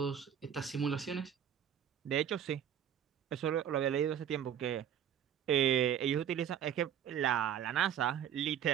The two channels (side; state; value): left; quieter; 9.2 dB